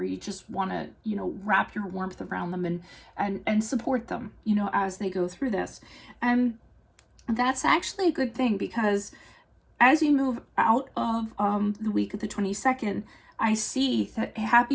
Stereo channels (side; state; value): both; identical; correlation 1.00